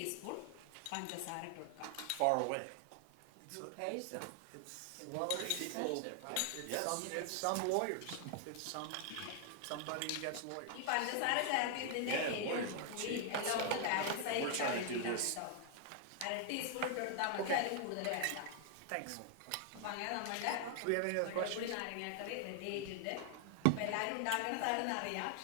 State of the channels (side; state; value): both; different; correlation 0.00